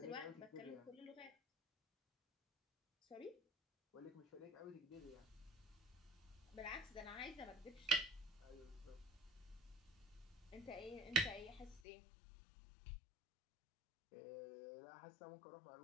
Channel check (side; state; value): right; drops out; at 11.8 s